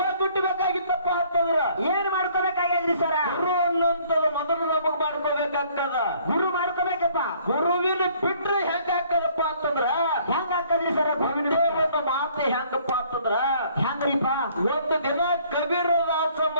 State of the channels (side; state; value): both; inverted; correlation -0.60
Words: ಅಂತಂದ್ರ ಏನ್ ಮಾಡ್ಕೋಬೇಕಾಗ್ಯದ್ರಿ ಸರ? ಗುರು ಅನ್ನೋಂಥದ್ದು ಮೊದಲು ನಮಗ್ ಮಾಡ್ಕೋಬೇಕಾಗ್ತದ. ಗುರು ಮಾಡ್ಕೋಬೇಕಪ್ಪ. ಗುರುವಿನ ಬಿಟ್ರೆ ಹೆಂಗ ಹಾಕದಪ್ಪ ಅಂತಂದ್ರ ಹೆಂಗ ಹಾಕದ್ರಿ ಸರ? ಒಂದೇ ಒಂದು ಮಾತು ಹೆಂಗಪ್ಪ ಅಂತಂದ್ರ ಹೆಂಗ್ರಿಪ್ಪ? ಒಂದು ದಿನ ಕಬೀರದಾಸ